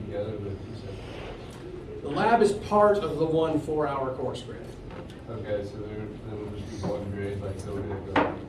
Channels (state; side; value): identical; both; correlation 1.00